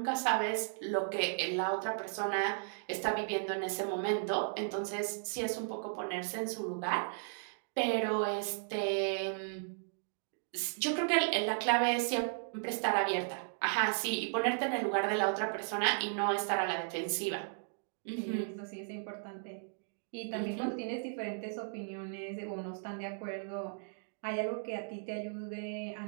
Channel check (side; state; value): left; silent; digital silence